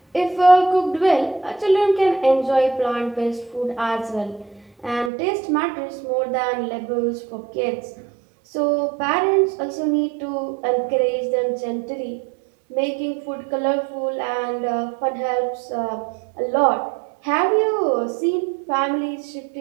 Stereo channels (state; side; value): drops out; left; at 5.1 s